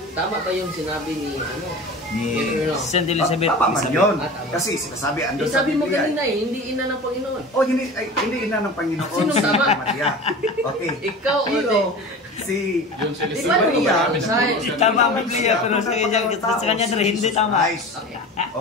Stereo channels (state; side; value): normal; both; correlation 0.34